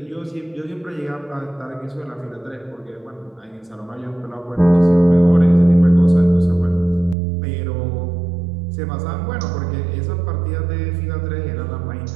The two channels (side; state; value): left; drops out; at 7.2 s